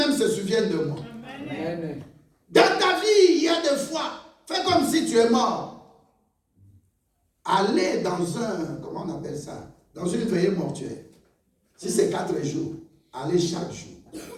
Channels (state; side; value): identical; both; correlation 1.00